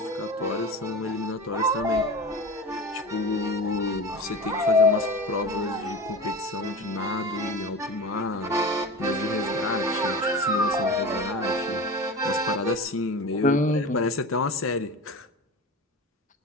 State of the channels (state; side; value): normal; both; correlation 0.31